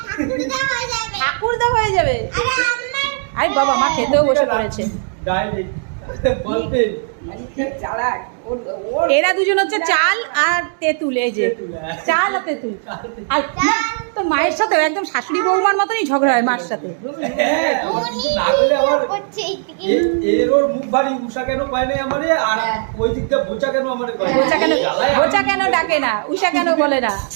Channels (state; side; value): silent; left; 62 dB below the other